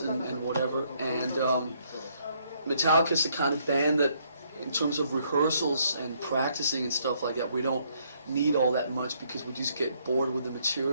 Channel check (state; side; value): inverted; both; correlation -0.70